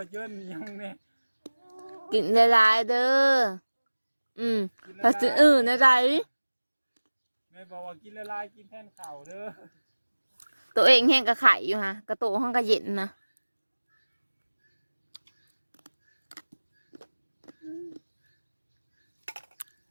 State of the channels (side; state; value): both; inverted; correlation -1.00